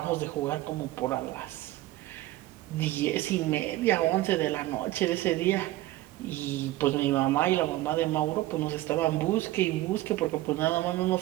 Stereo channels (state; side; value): quieter; left; 16.7 dB